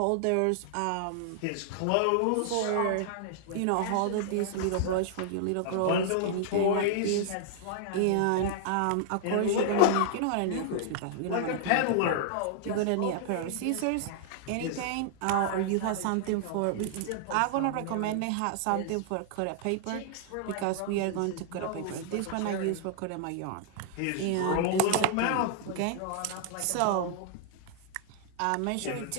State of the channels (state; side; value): different; both; correlation -0.01